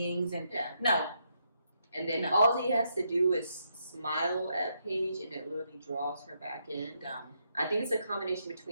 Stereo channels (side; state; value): both; inverted; correlation -0.78